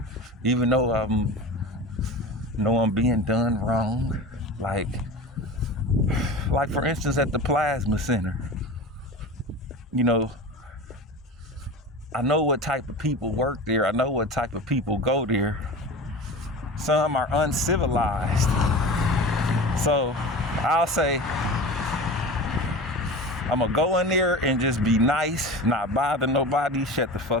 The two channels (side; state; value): both; normal; correlation 0.32